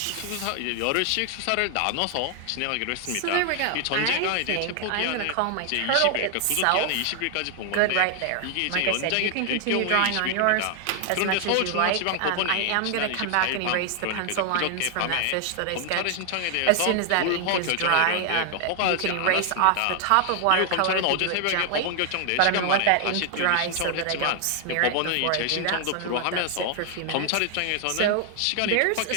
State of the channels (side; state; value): both; different; correlation 0.00